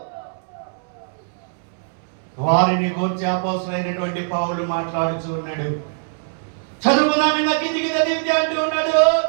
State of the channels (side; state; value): left; silent; 64 dB below the other